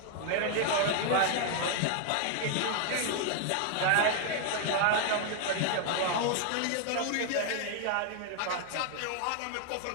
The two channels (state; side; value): different; both; correlation 0.00